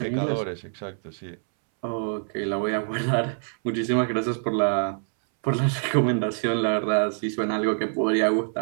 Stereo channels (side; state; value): left; silent; 61 dB below the other